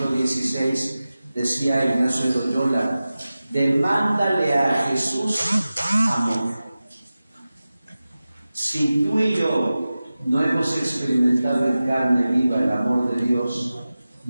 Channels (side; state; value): both; inverted; correlation -0.95